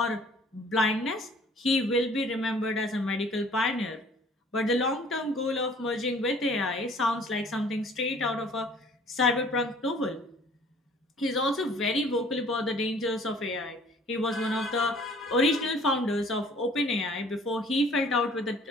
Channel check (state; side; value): normal; both; correlation 0.54